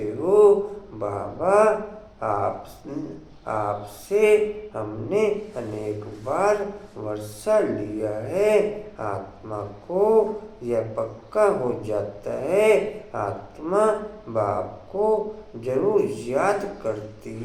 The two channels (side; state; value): both; identical; correlation 1.00